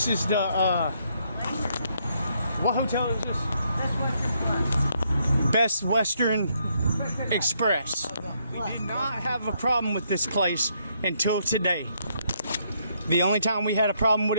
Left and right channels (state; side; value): inverted; both; correlation -0.73